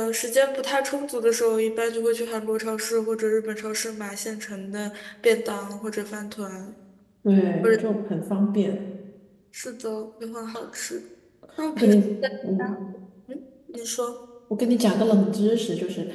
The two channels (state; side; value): identical; both; correlation 1.00